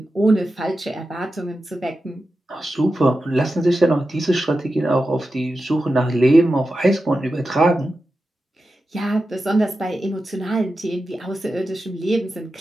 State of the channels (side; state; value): both; normal; correlation 0.91